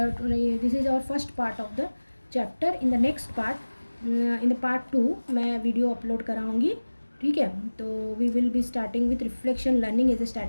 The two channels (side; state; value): both; inverted; correlation -1.00